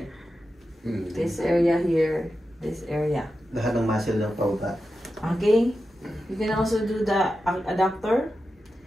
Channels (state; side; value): normal; both; correlation 0.91